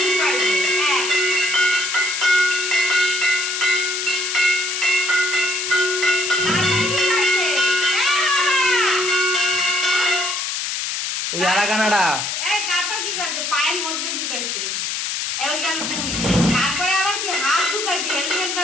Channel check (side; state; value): left; noise; hiss, 2 dB below the sound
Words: ওই আরাগানাটা তারপর কি করছে? পায়ের মধ্যে ঢুকাইছে। ওই গেল 2। তারপরে আবার কি হাত ঢুকাইছে, হেলমেট